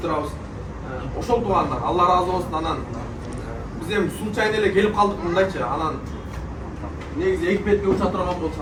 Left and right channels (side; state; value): both; identical; correlation 1.00